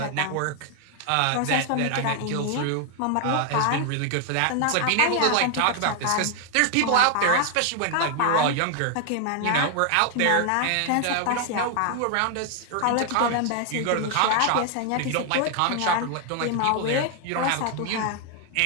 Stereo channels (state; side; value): different; both; correlation 0.00